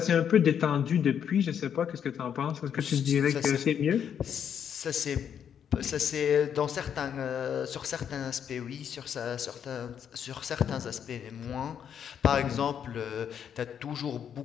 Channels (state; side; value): quieter; right; 8.4 dB